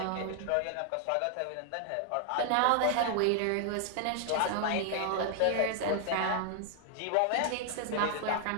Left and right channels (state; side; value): different; both; correlation 0.00